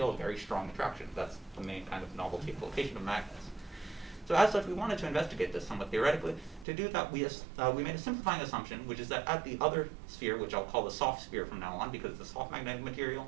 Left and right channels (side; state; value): left; drops out; at 6.7 s